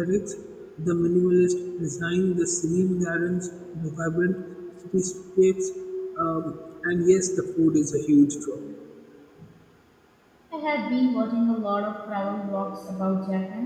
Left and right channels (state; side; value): identical; both; correlation 1.00